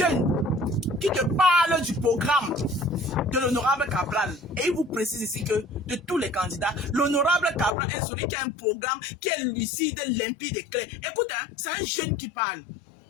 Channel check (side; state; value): right; drops out; at 7.7 s